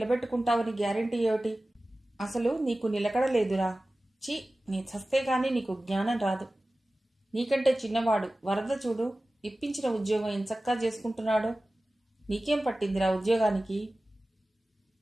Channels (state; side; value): normal; both; correlation 0.96